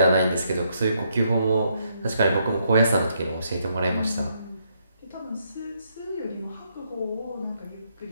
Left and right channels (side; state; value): both; inverted; correlation -0.75